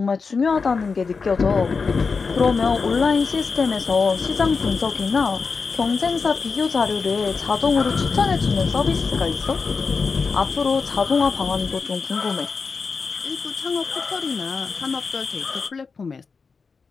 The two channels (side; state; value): right; quieter; 4.9 dB